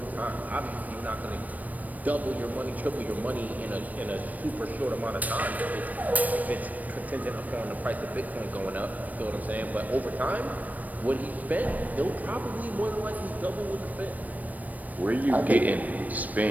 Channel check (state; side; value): late; left; 0.077 ms